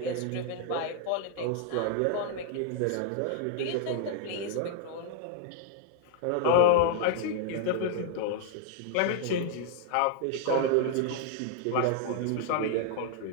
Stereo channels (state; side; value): different; both; correlation 0.00